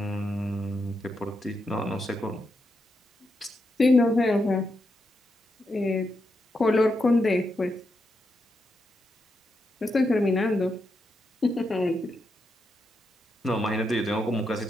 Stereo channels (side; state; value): both; normal; correlation 0.84